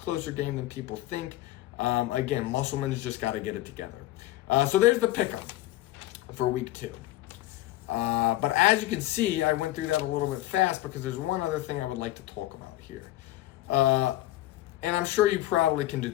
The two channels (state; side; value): quieter; right; 15.9 dB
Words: game than people think. Again, Musselman's just got to get it together. So there's the pickup for week 2. But as you can see, I went through that a little bit fast because there's one other thing I would like to talk about here. And I'm sure you probably can